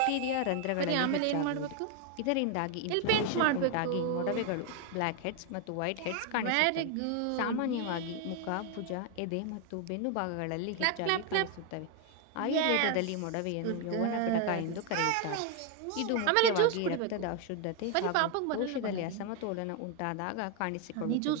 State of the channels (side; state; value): both; different; correlation 0.01